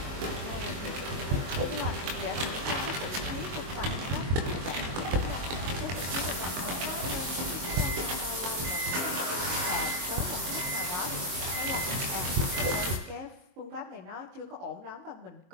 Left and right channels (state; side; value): late; left; 23 ms